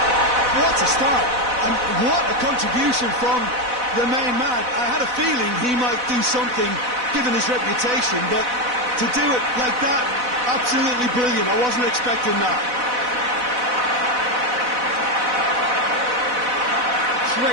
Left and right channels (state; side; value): late; left; 4.0 ms